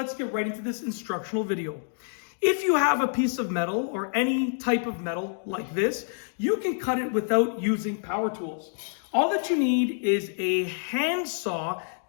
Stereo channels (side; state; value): right; silent; digital silence